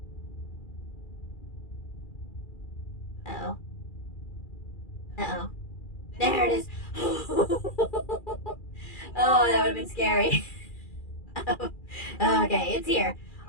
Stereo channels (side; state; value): right; late; 2.4 ms